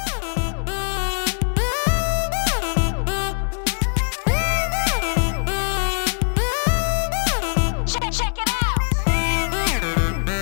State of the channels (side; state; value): right; silent; digital silence